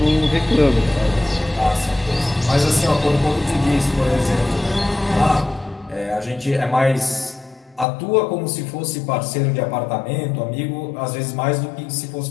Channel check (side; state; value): right; drops out; at 7.9 s